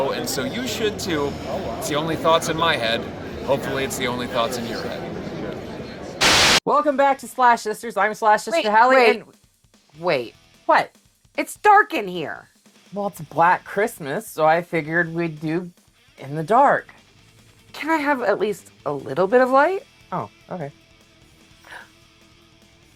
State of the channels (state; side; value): identical; both; correlation 1.00